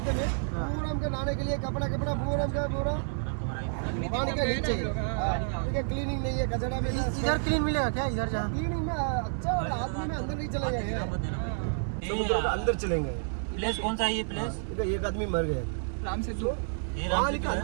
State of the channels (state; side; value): silent; left; digital silence